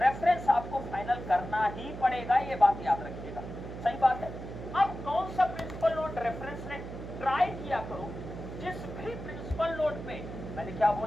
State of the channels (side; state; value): right; noise; hum, 10 dB below the sound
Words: रेफरेंस आपको फाइनल करना ही पड़ेगा, ये बात याद रखिएगा। सही बात है। अब कौन सा प्रिंसिपल नोड रेफरेंस ने ट्राई किया करो, जिस भी प्रिंसिपल नोड पे, मैंने क्या